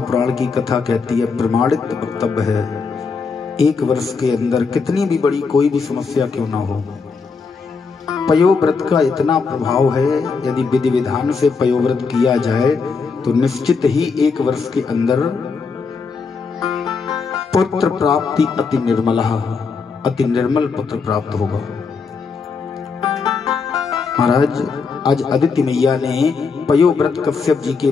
की कथा कहती है, प्रमाणित वक्तव्य है, 1 वर्ष के अंदर कितनी भी बड़ी कोई भी समस्या क्यों ना हो, पयोव्रत का इतना प्रभाव है। यदि विधि विधान से पयोव्रत किया जाए तो निश्चित ही 1 वर्ष के अंदर पुत्र प्राप्ति अति निर्मल पुत्र प्राप्त होगा। महाराज आज अदिति मैया ने पयोव्रत कश्यप जी के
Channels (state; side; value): quieter; right; 5.0 dB